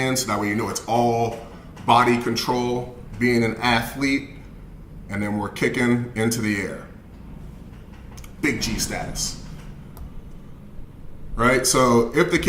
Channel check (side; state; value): both; identical; correlation 1.00